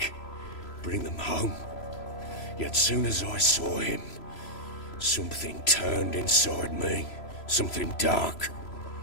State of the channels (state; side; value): late; right; 3.0 ms